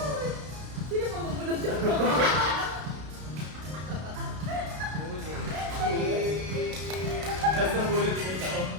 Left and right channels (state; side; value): late; left; 32 ms